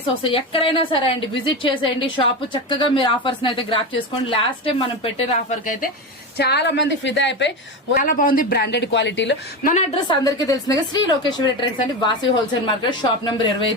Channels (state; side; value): normal; both; correlation 0.20